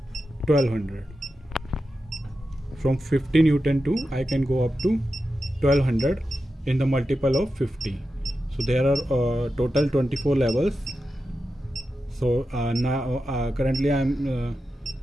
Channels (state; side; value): normal; both; correlation 0.90